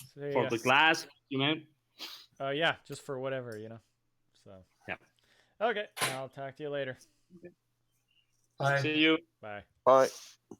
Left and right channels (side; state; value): both; identical; correlation 1.00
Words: So, for the class, man. Yeah, just for whatever, So yeah. Okay, I'll talk to you later. Bye. See you. Bye. Bye.